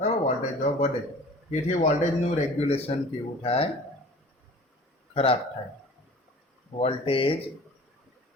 વોલ્ટેજ ડ્રોપ વધે તેથી વોલ્ટેજનું રેગ્યુલેશન કેવું થાય? ખરાબ થાય. વોલ્ટેજ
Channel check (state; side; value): normal; both; correlation 0.44